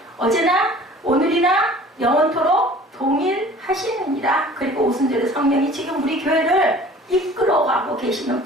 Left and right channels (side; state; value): both; normal; correlation 0.47